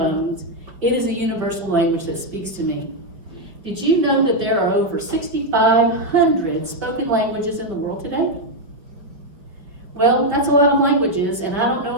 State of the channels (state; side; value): late; left; 5.1 ms